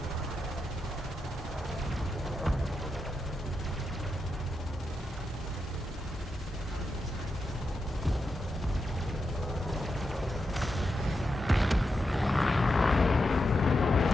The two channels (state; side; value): normal; both; correlation 0.86